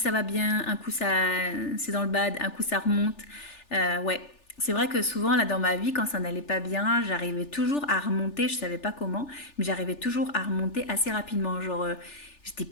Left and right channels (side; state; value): right; late; 3.4 ms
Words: va bien, un coup ça c'est dans le bad, un coup ça remonte. Ouais, c'est vrai que souvent là dans ma vie, quand ça n'allait pas bien, j'arrivais toujours à remonter, je savais pas comment, mais j'arrivais toujours à remonter assez rapidement. Genre, j'étais